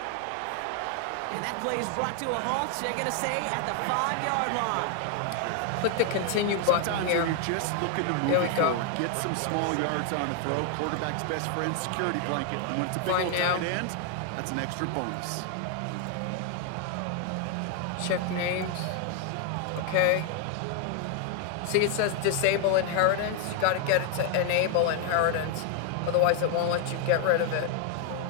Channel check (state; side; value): different; both; correlation 0.00